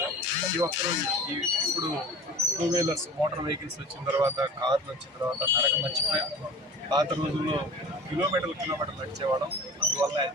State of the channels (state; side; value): normal; both; correlation 0.39